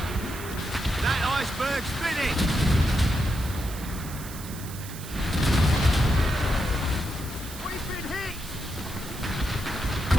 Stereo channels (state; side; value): noise; right; hiss, 13 dB below the sound